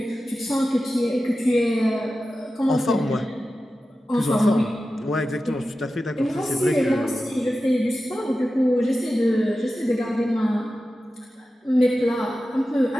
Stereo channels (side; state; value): both; normal; correlation 0.93